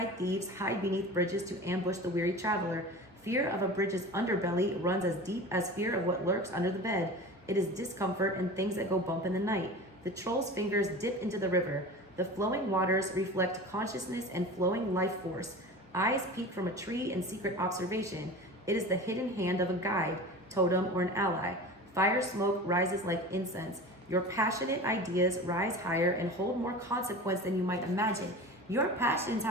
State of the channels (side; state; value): both; normal; correlation 0.34